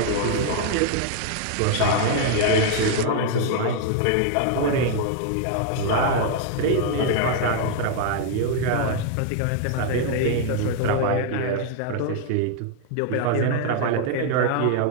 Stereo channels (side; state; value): both; different; correlation 0.00